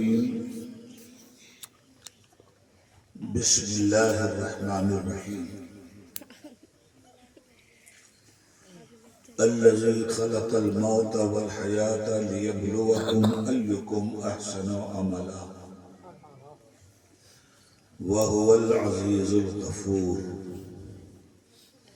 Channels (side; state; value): both; identical; correlation 1.00